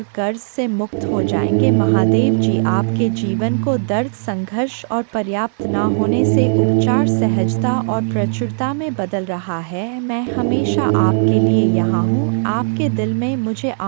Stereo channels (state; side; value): silent; left; digital silence